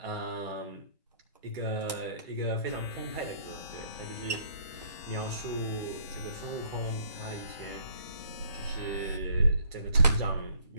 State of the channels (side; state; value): both; inverted; correlation -0.62